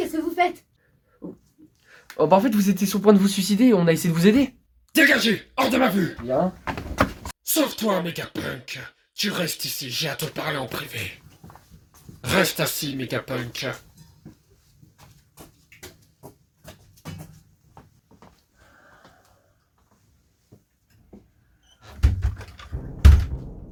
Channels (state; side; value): identical; both; correlation 1.00